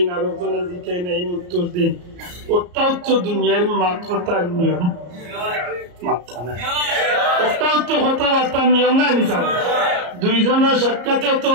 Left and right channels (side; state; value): left; late; 34 ms